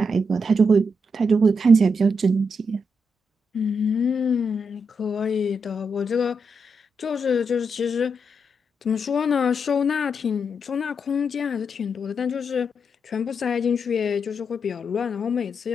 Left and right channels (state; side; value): normal; both; correlation 0.82